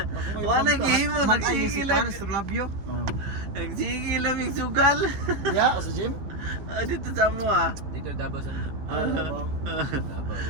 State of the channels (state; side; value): late; left; 14 ms